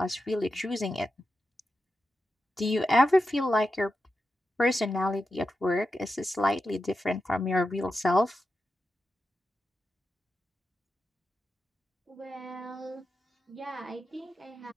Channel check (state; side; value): normal; both; correlation 0.89